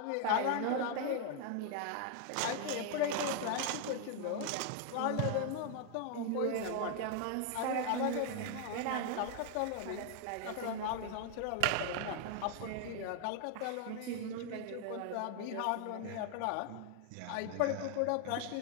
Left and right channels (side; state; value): both; different; correlation 0.00